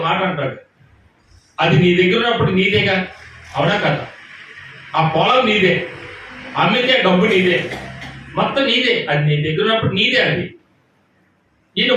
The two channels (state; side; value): identical; both; correlation 1.00